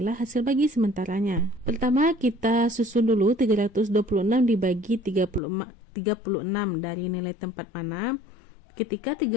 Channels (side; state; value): right; drops out; at 5.4 s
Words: hasil bagi sementaranya. Pertama, kita susun dulu 326 dibagi 36 dari nilai tempat mana. Ketika